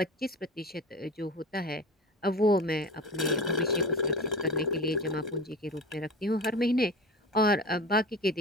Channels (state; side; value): normal; both; correlation 0.33